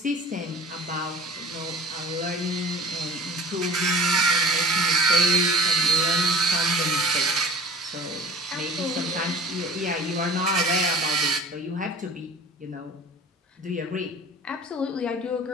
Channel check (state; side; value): normal; both; correlation 0.42